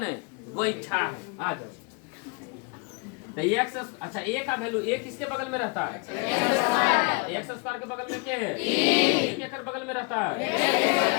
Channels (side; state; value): right; quieter; 31.6 dB